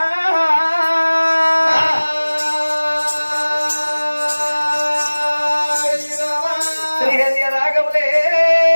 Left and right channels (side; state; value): both; inverted; correlation -1.00